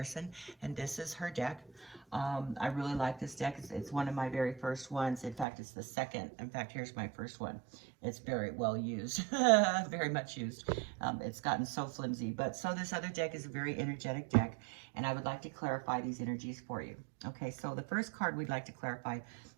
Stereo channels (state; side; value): drops out; left; at 5.5 s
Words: And this is her deck. I really like this deck. It's one of my very first ones. In fact, it's the second. In fact, here's my first one. It's very well used, very much used. It's gotten so flimsy. But so this other deck is a very energetic deck, and I would like to clarify these energies for you. Okay, so the first card we'd like to clarify